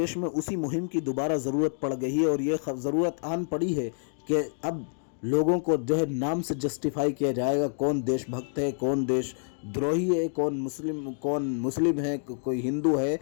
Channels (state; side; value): silent; right; digital silence